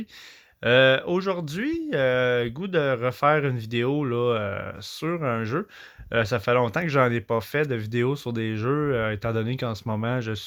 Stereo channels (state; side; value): identical; both; correlation 1.00